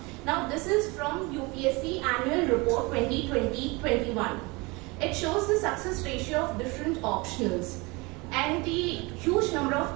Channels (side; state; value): left; quieter; 25.7 dB